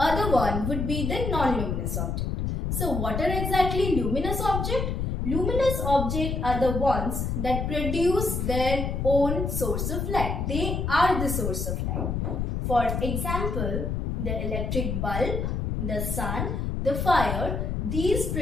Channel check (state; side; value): noise; left; rumble, 1 dB below the sound